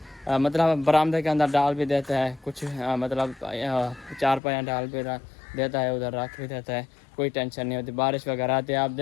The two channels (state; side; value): drops out; right; at 4.4 s